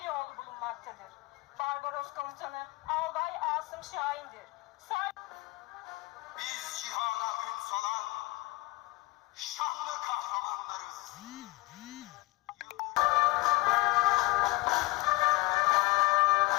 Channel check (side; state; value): right; quieter; 20.4 dB